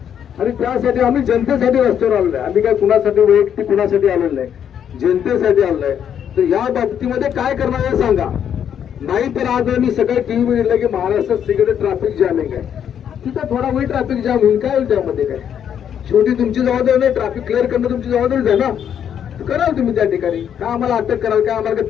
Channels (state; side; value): quieter; right; 8.9 dB